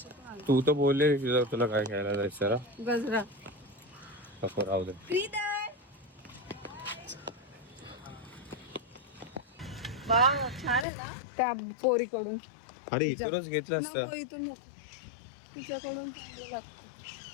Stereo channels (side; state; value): right; drops out; at 10.9 s